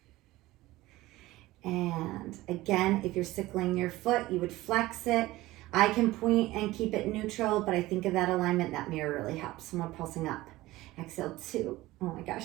And again, if you're sickling your foot, you would flex it. I can point and keep it neutral, but I think of that alignment, that mirror really helps. So I'm pulsing up. Exhale, 2. Oh my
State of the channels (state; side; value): quieter; left; 18.0 dB